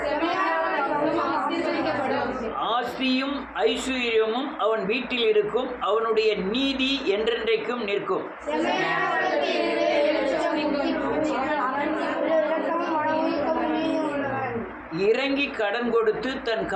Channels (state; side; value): identical; both; correlation 1.00